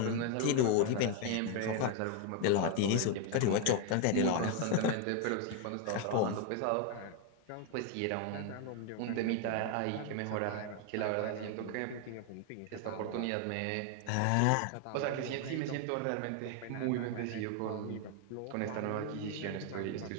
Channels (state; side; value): different; both; correlation 0.01